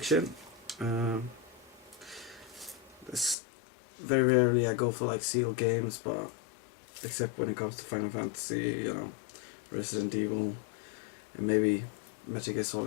This, very rarely I go for like sealed games, but except when it comes to Final Fantasy, you know, Resident Evil, and maybe Metal Gear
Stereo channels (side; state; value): right; drops out; at 3.4 s